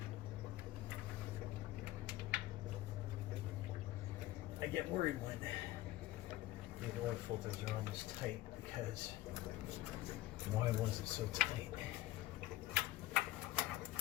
I get worried when the oil filters are on this tight because why was it so tight?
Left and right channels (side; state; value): right; quieter; 15.8 dB